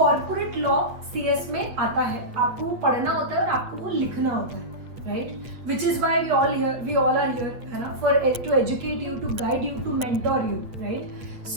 लॉ CS में आता है, आपको वो पढ़ना होता है और आपको वो लिखना होता है, right. Which is why we all are here, है ना, for to educate you, to guide you, to mentor you, right.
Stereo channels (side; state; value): left; late; 8.4 ms